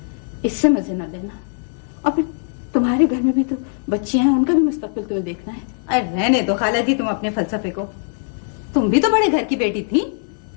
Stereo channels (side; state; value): right; silent; digital silence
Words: इससे मजे न लेना। और फिर तुम्हारे घर में भी तो बच्चियां हैं, उनका भी मुस्तकबिल तुम्हें देखना है। अरे रहने दो खाला जी तुम अपने फलसफे को। तुम भी तो बड़े घर की बेटी थी,